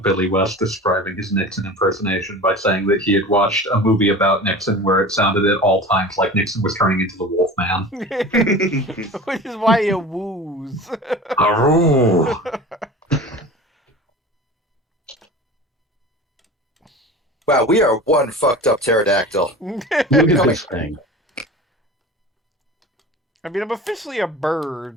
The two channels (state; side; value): normal; both; correlation 0.36